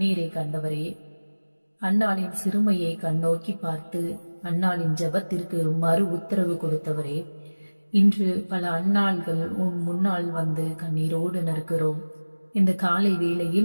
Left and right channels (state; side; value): inverted; both; correlation -1.00